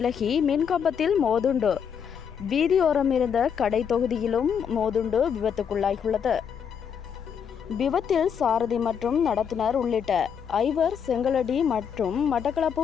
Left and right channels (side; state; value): right; quieter; 7.4 dB